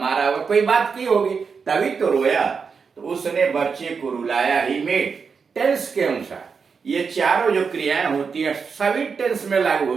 होगा, कोई बात की होगी तभी तो रोया। तो उसने बच्चे को रुलाया, ही मेड। टेंस के अनुसार ये चारों जो क्रियाएं होती हैं सभी टेंस में लागू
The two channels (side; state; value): left; quieter; 5.6 dB